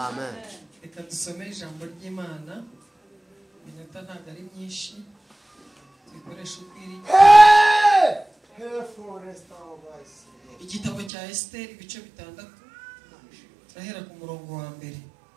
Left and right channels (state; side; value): drops out; left; at 11.1 s